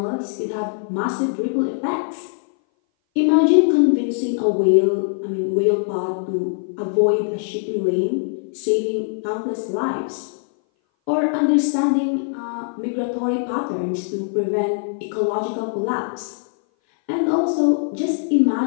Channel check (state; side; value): silent; right; 59 dB below the other